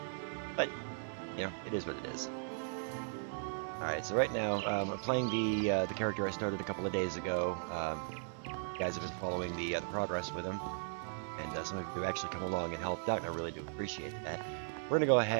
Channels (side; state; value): left; silent; digital silence